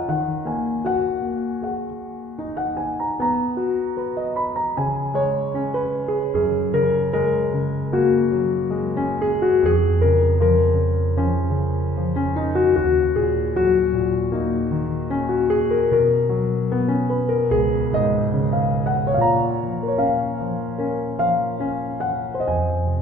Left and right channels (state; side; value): normal; both; correlation 0.65